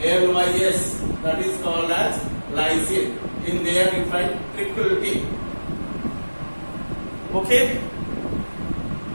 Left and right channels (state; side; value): inverted; both; correlation -1.00